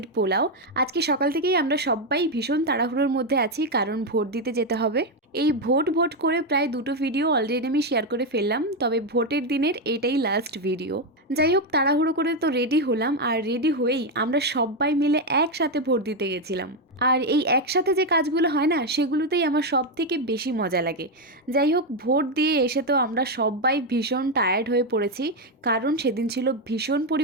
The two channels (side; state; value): both; normal; correlation 0.06